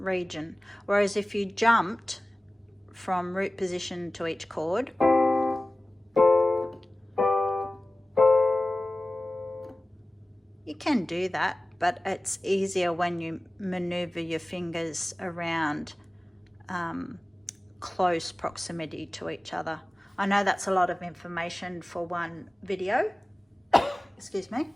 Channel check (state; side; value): normal; both; correlation 0.97